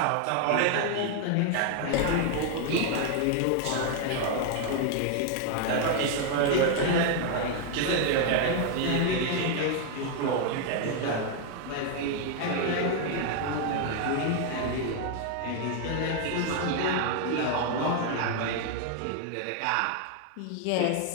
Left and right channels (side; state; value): both; different; correlation 0.00